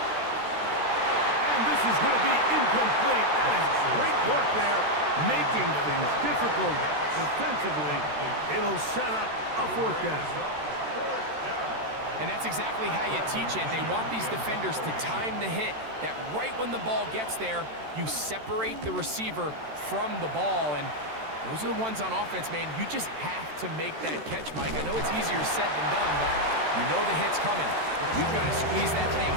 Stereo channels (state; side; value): late; left; 13 ms